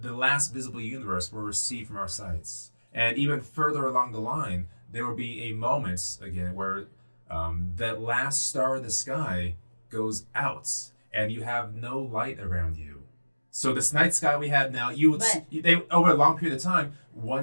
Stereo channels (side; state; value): both; inverted; correlation -1.00